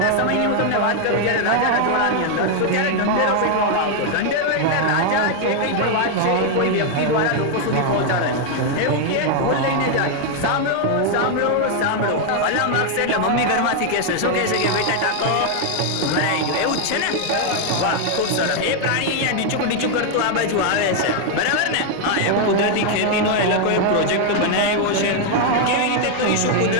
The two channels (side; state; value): both; different; correlation 0.00